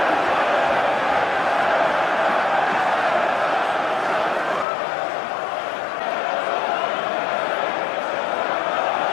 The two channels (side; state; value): right; drops out; at 4.7 s